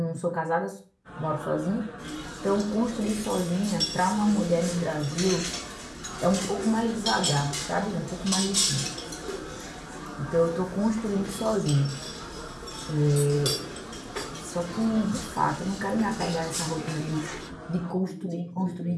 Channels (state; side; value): identical; both; correlation 1.00